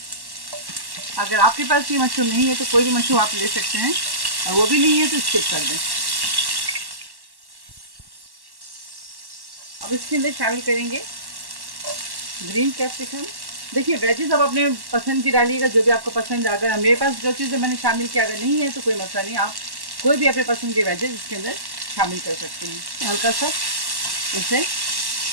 अगर आपके पास ये मशरूम नहीं है तो कोई भी मशरूम आप ले सकते हैं, और वो भी नहीं है तो स्किप कर दें। अब इसके अंदर शामिल करेंगे ग्रीन कैप्सिकम। देखिए वेजेस आप अपने पसंद की डालिएगा, जो भी आपको पसंद है। अगर मेरे पास जो चीज़ें मैंने शामिल किया अगर नहीं है तो कोई मसला नहीं, आप कोई भी अपने पसंद के वेजेस इसके अंदर शामिल कर सकते हैं। हल्का सा इसे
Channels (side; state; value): left; late; 1.1 ms